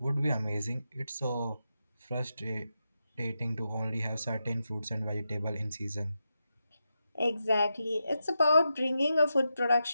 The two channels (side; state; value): both; inverted; correlation -0.88